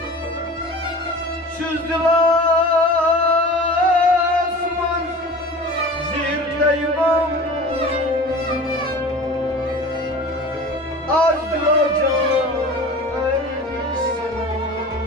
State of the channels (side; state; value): both; normal; correlation 0.38